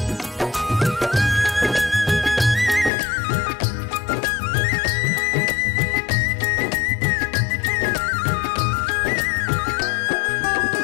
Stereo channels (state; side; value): drops out; right; at 2.9 s